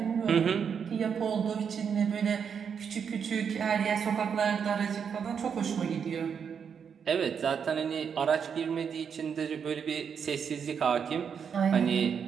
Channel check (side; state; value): left; quieter; 7.0 dB